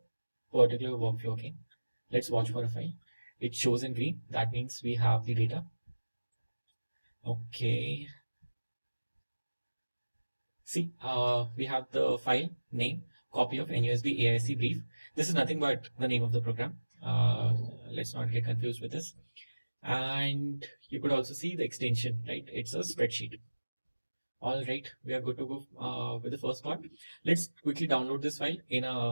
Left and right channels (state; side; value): inverted; both; correlation -1.00